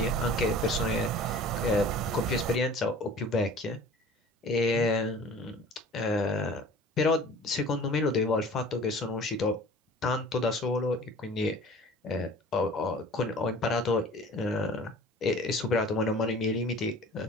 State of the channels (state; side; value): normal; both; correlation 0.44